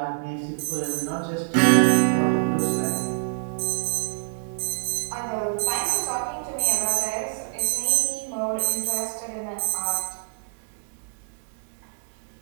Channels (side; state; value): left; quieter; 38.1 dB